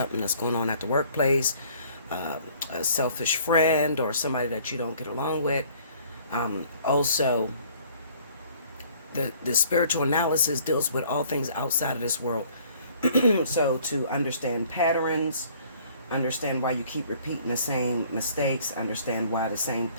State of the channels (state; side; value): inverted; both; correlation -0.57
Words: that's going on at the workplace, a selfish friend, or somebody that you don't get along with. Also, the spiritual analysis deals with all things outside of this world. So to understand patterns, understand why you keep repeating the same mistakes, understand why the same